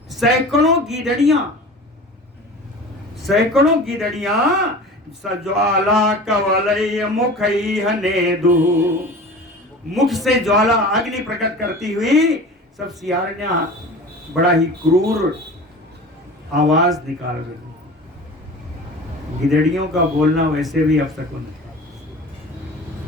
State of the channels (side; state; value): both; normal; correlation 0.37